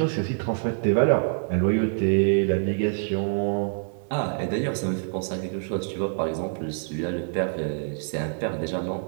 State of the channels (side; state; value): left; silent; digital silence